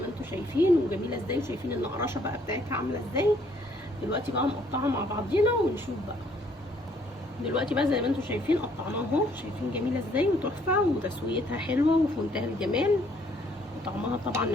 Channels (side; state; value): both; normal; correlation 0.65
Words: ما انتوا شايفين وجميله ازاي، وشايفين النقراشه بقى بتاعتها عامله ازاي. دلوقتي بقى نقطعها مع بعضينا ونشوف بقى. دلوقتي بقى زي ما انتوا شايفين قطعناها اهو، شايفين جميله ازاي وتحفه وتسويتها حلوه وفي منتهى الجمال، وطعمها طبعا